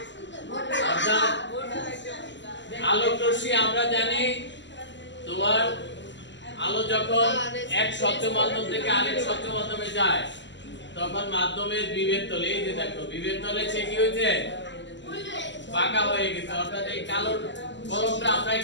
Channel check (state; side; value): late; right; 0.53 ms